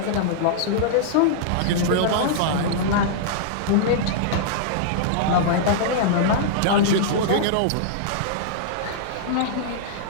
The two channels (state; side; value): different; both; correlation -0.02